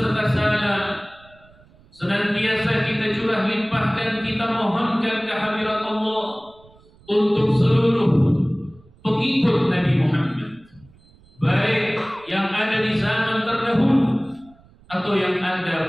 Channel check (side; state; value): right; noise; rumble, 28 dB below the sound